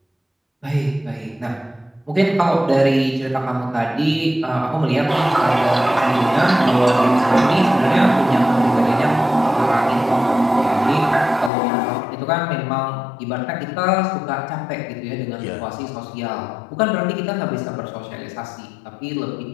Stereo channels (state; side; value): drops out; right; at 11.5 s